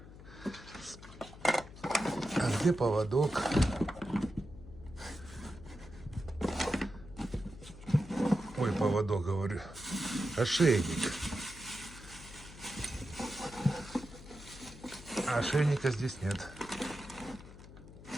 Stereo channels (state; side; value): noise; left; hum, 17 dB below the sound